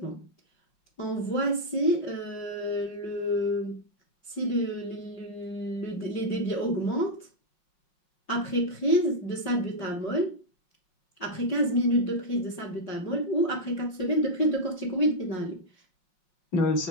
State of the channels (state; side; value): late; right; 5.5 ms